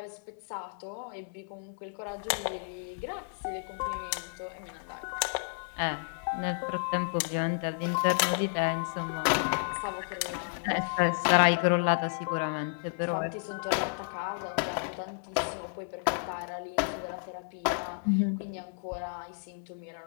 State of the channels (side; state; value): right; silent; 57 dB below the other